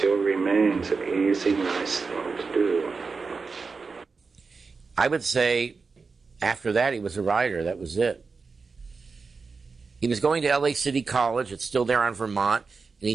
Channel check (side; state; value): left; quieter; 4.6 dB